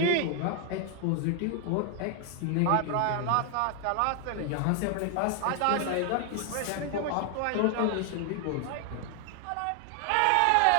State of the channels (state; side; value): different; both; correlation 0.00